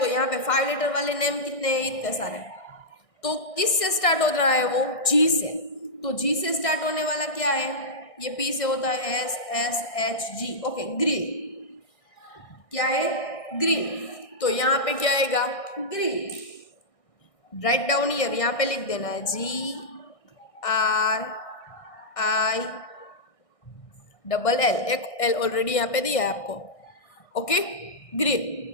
यहाँ पे 5 लेटर वाले नेम कितने हैं? इतने सारे। तो किस से स्टार्ट हो रहा है वो? जी से। तो जी से स्टार्ट होने वाला क्या है? ये पी से होता है S S H G. Okay, green. क्या है? ग्रीन। तो यहाँ पे क्या आएगा? ग्रीन। राइट डाउन ईयर, यहाँ पे लिख देना है GRIN। एक एल ऑलरेडी यहाँ पे दिया है आपको। Okay, green.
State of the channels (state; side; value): late; right; 1.6 ms